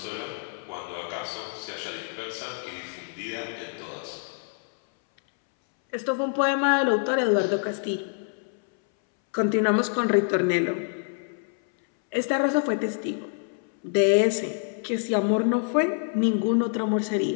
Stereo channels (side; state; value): right; silent; 61 dB below the other